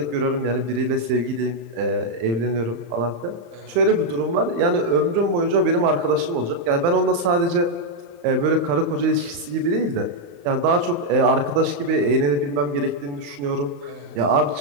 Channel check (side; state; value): left; late; 35 ms